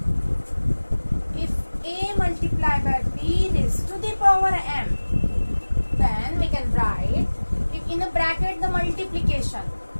if a multiplied by b raised to the power m, then we can write if in a bracket the multiplication.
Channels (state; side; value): inverted; both; correlation -1.00